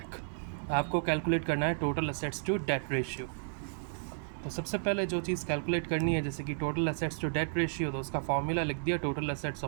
आपको कैलकुलेट करना है total assets to debt ratio. तो सबसे पहले जो चीज़ कैलकुलेट करनी है, जैसे कि total assets to debt ratio, तो उसका फॉर्मूला लिख दिया टोटल असेट्स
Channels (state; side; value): silent; left; digital silence